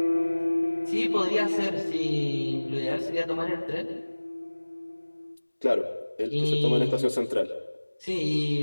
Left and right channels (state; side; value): inverted; both; correlation -1.00